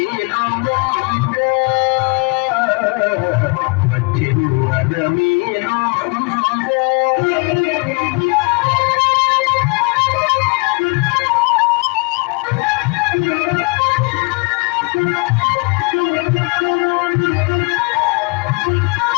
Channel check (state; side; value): quieter; right; 30.9 dB